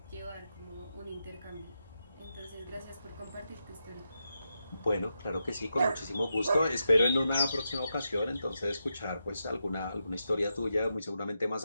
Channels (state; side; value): inverted; both; correlation -0.86